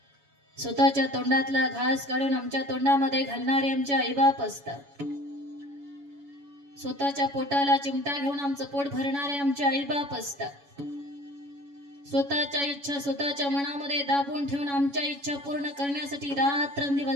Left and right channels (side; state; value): left; late; 7.1 ms